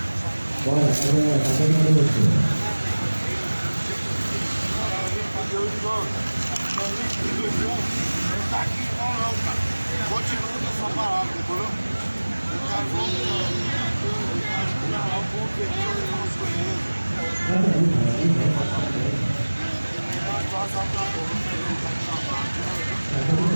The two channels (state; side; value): inverted; both; correlation -1.00